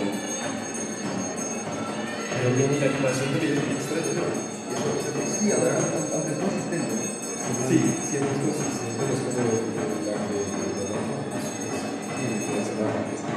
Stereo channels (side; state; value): both; identical; correlation 1.00